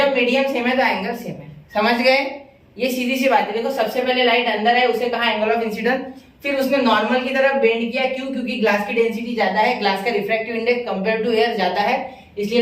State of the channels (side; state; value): both; identical; correlation 1.00